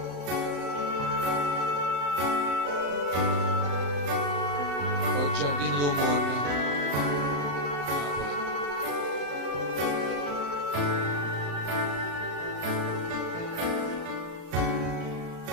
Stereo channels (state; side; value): late; left; 35 ms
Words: Col giardino del mondo, Napoli.